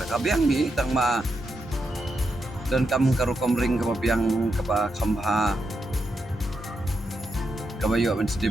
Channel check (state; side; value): normal; both; correlation 0.84